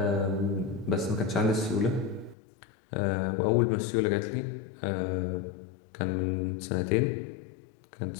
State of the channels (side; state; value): right; drops out; at 2.4 s